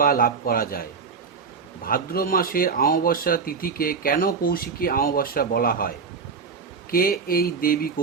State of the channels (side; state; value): left; quieter; 5.3 dB